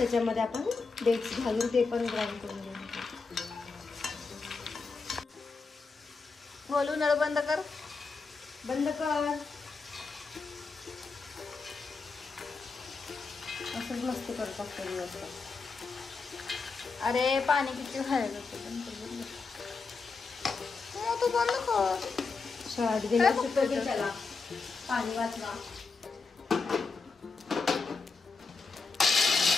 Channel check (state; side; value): quieter; right; 4.5 dB